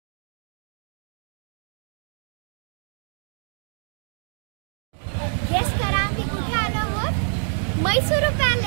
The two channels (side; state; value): left; silent; digital silence